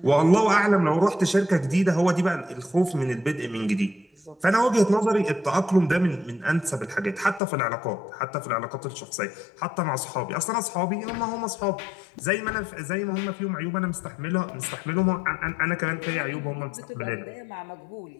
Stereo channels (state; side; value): drops out; right; at 7.4 s